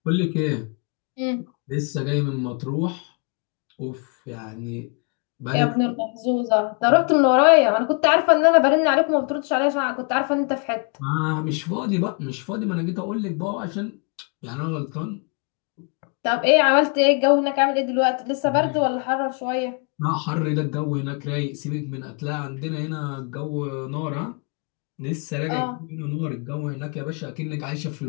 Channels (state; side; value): quieter; right; 36.8 dB